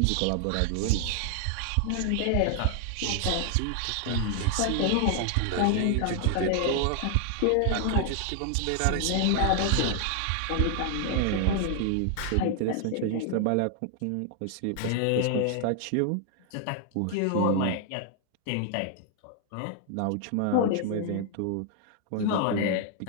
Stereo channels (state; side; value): different; both; correlation 0.00